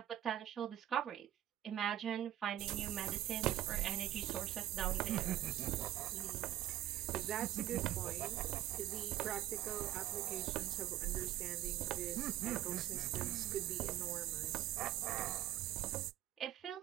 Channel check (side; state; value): left; quieter; 13.4 dB